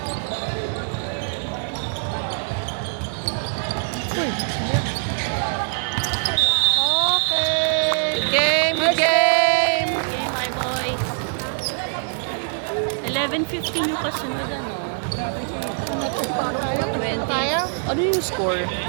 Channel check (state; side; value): silent; left; 63 dB below the other